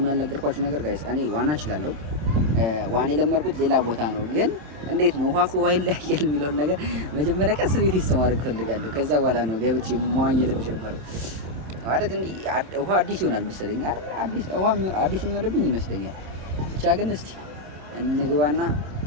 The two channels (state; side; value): late; left; 27 ms